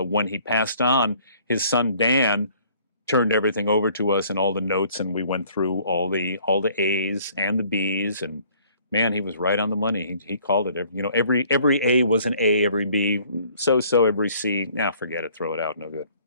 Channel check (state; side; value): inverted; both; correlation -0.58